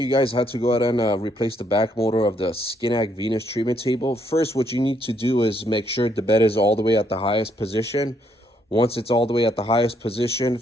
guys how to go ahead and replace the back motor of the Skinak Venus treatment table. First, what you need to do is make sure the bed is all the way at the highest position. Once it's all the way at the highest position,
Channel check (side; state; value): both; normal; correlation 0.72